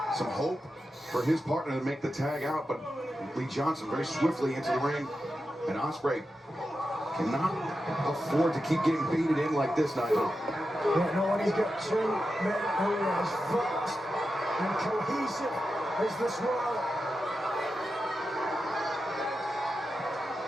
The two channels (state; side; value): normal; both; correlation 0.90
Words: some hope for his partner to make the tag out, but Lee Johnson very swiftly into the ring. And Ospreay cannot afford to keep getting baited in like this, Nigel. Yeah, no, when he's got two men who are as fast and cohesive as the Swirl.